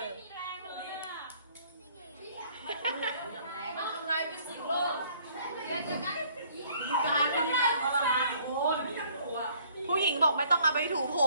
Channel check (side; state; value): both; inverted; correlation -0.60